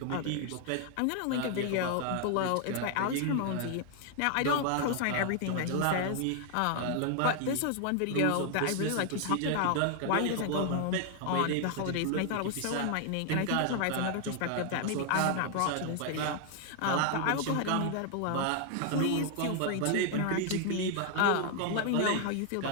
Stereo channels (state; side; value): different; both; correlation 0.00